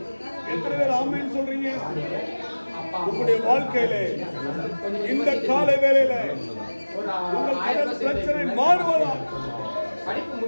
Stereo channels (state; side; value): inverted; both; correlation -1.00